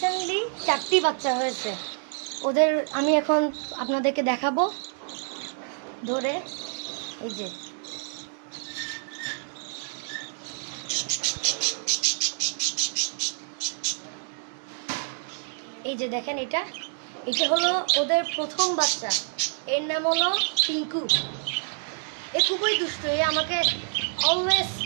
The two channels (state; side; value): silent; left; 60 dB below the other